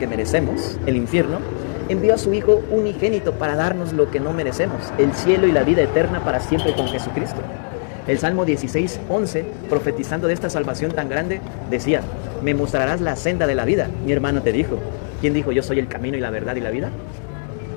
merecemos, el infierno, envió a su Hijo unigénito para darnos lo que no merecemos, el cielo y la vida eterna para siempre con Jesucristo. El Salmo 16, 11, profetizando de esta salvación tan grande, decía, me mostrarás la senda de la vida. Mi hermano te dijo. ¿Quién dijo yo soy el camino y la verdad y la vida?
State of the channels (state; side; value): silent; right; digital silence